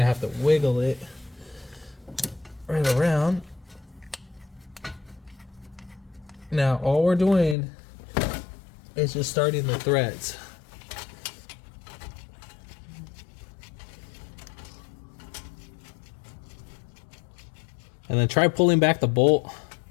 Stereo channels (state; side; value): drops out; right; at 7.6 s